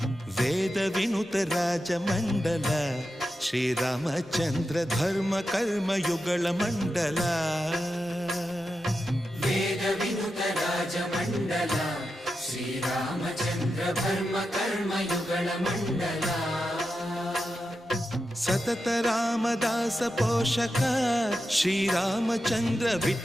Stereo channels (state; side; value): normal; both; correlation 0.89